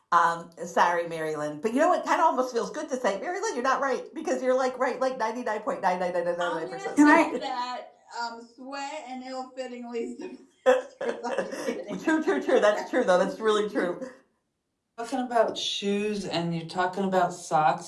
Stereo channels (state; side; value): identical; both; correlation 1.00